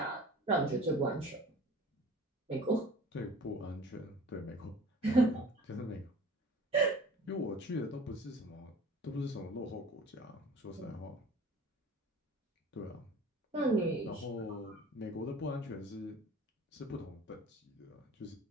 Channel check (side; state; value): both; normal; correlation 0.44